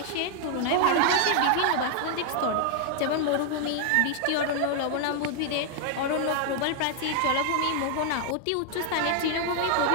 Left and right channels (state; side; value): different; both; correlation 0.00